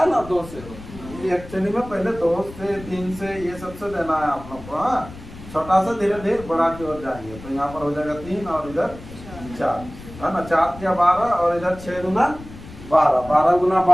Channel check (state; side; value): noise; left; rumble, 15 dB below the sound